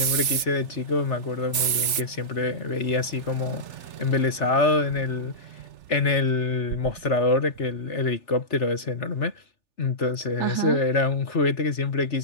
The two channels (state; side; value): late; right; 3.4 ms